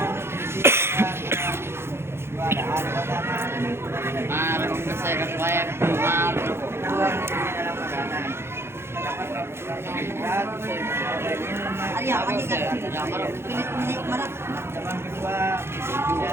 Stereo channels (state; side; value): late; left; 0.12 ms